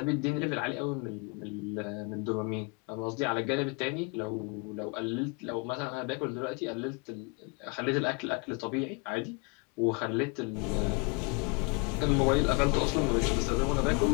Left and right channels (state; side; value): quieter; right; 32.1 dB